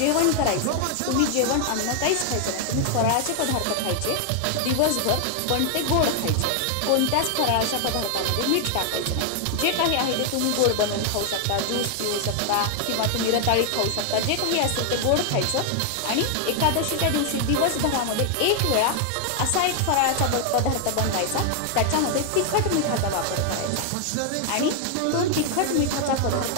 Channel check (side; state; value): both; different; correlation 0.00